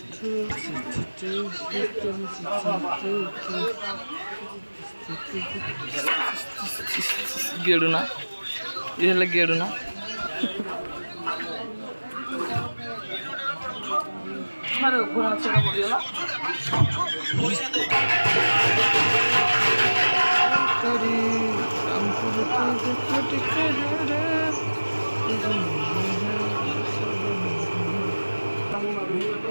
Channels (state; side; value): inverted; both; correlation -1.00